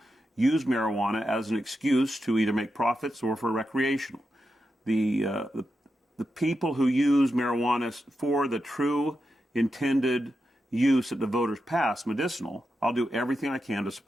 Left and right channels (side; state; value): both; normal; correlation 0.88